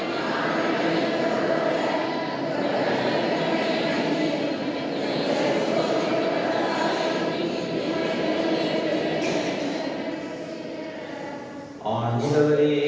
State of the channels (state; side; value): identical; both; correlation 1.00